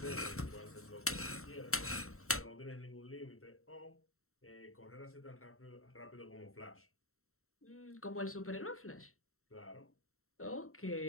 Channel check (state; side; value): late; right; 0.63 ms